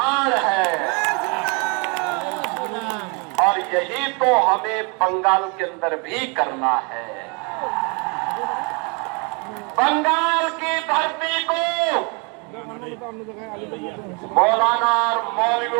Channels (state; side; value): quieter; left; 33.2 dB